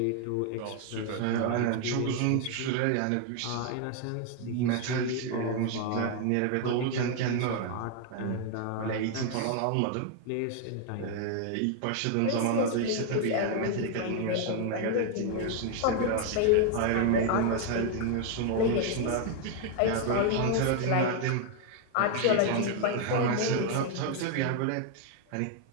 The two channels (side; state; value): both; different; correlation 0.00